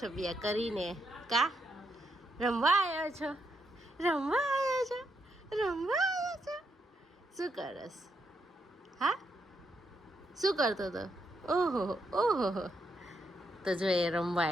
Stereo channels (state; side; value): normal; both; correlation 0.79